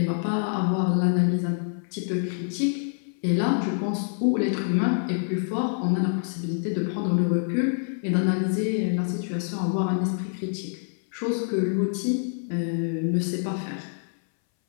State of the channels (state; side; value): silent; right; 61 dB below the other